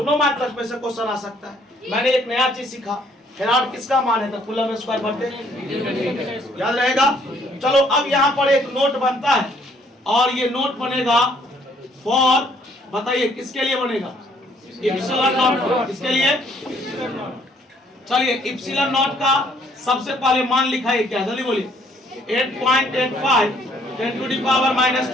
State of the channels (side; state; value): both; normal; correlation 0.64